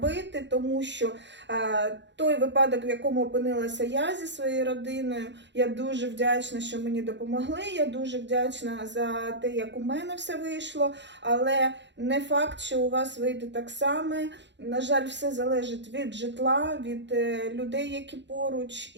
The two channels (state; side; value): late; left; 0.52 ms